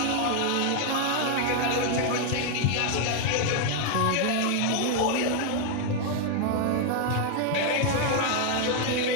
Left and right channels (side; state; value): both; different; correlation 0.00